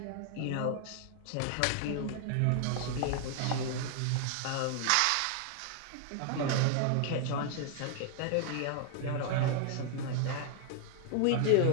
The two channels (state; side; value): different; both; correlation 0.00